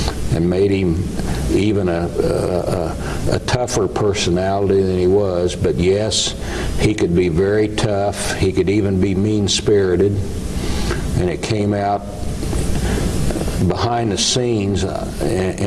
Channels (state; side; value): identical; both; correlation 1.00